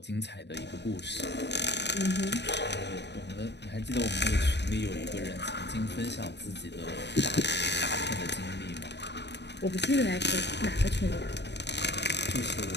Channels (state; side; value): late; right; 0.50 ms